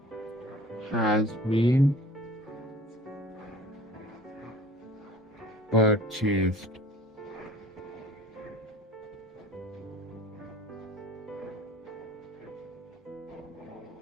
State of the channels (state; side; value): normal; both; correlation 0.46